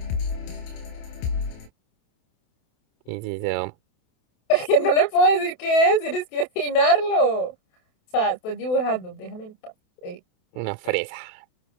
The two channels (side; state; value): right; late; 28 ms